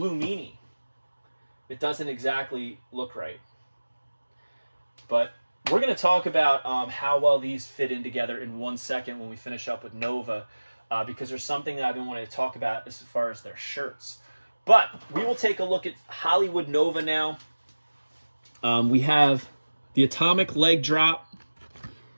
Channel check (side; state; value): both; inverted; correlation -1.00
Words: Meanie, it doesn't exactly look right. But we're going to talk about how well these fit in together in 1 second when we finish up with Nova, because there's something that I've been wanting to talk about as far as their shirts. But we will take a look at Hollywood Nova now. We have the Atomic Leg Drop.